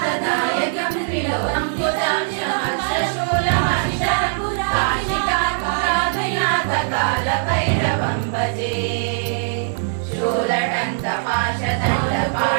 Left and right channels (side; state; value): left; silent; 64 dB below the other